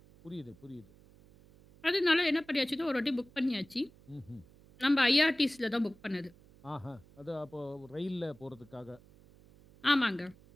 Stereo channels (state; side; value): noise; right; hum, 25 dB below the sound